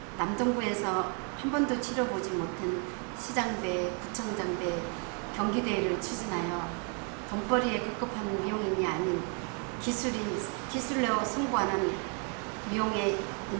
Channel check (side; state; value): left; quieter; 37.6 dB